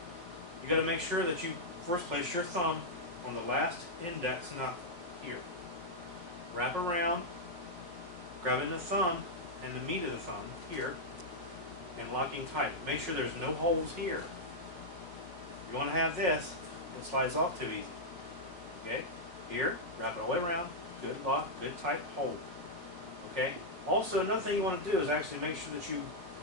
You've got to make sure that you first place your thumb on the last index knuckle here. Wrap around, grabbing the thumb and the meat of the thumb here, and locking tight. Make sure there's no holes here. You want to have this, it slides off too easy. Okay? Here, wrap it all the way around. Good lock, good tight hold. Okay? Also, another thing you want to do is actually make sure that you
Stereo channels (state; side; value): late; left; 5.5 ms